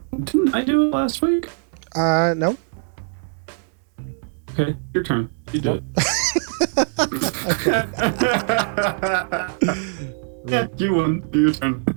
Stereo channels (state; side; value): silent; left; digital silence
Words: Didn't I do it last week? No. Okay, your turn. You do it. Okay. Yeah, you won. Your turn.